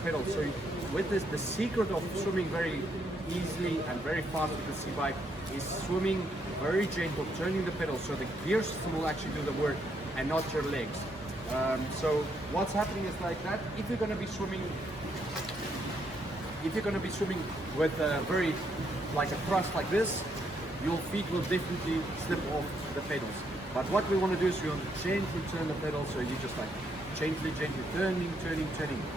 So with this, the secret of swimming very easily and very fast with the Seabike is swimming very gentle, turning the pedal, so the gear system will actually do the work and not your legs. So what's happening is like that. If you're going to be swimming with very like a thrust like this, your feet will definitely slip off the pedals. But what we want to do is we want to gently turn the pedal, so you just like gently turning.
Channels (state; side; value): normal; both; correlation 0.75